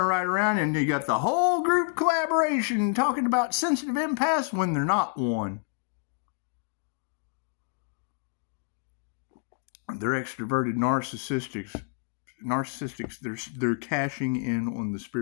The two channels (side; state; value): right; silent; 59 dB below the other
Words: right around and you got the whole group collaboration talking about sensitive empaths when they're not one. They're extroverted narcissistics. They're cashing in on the